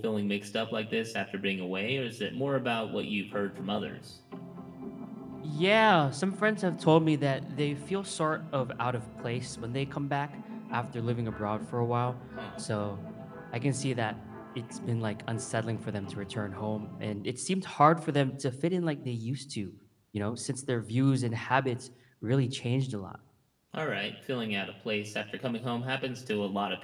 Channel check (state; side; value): identical; both; correlation 1.00